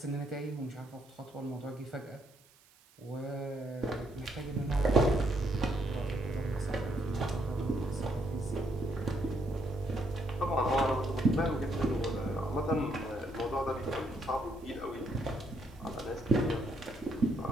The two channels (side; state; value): right; noise; hiss, 28 dB below the sound